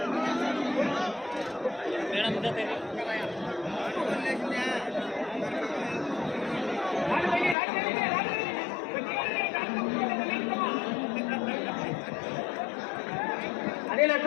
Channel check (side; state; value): right; drops out; at 7.6 s